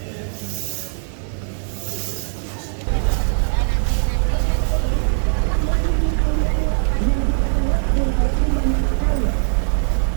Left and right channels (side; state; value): left; silent; 61 dB below the other